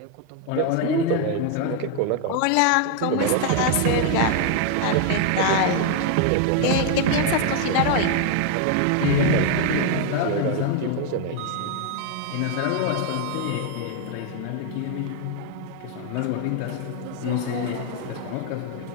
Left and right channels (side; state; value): both; different; correlation 0.01